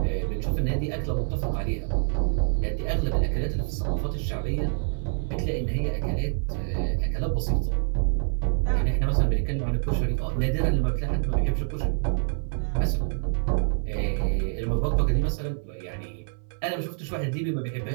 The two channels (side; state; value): left; silent; 61 dB below the other